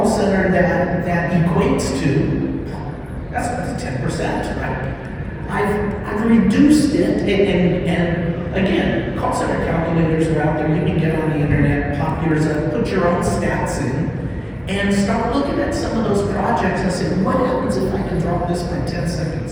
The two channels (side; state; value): both; identical; correlation 1.00